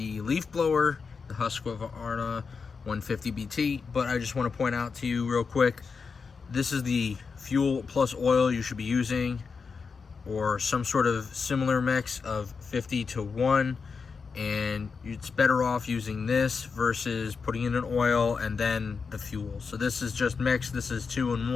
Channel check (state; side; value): quieter; right; 5.2 dB